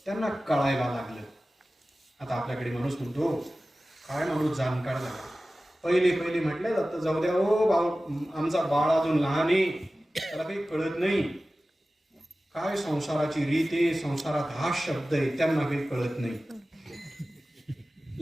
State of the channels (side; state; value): both; normal; correlation 0.96